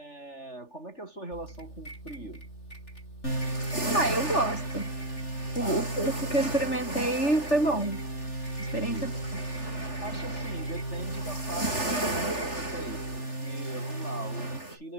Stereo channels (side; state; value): right; late; 3.4 ms